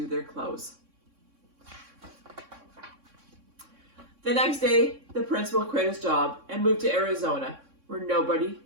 their clothes. The next day, the principal quit his job and moved to Arizona, where nobody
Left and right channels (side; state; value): left; late; 3.6 ms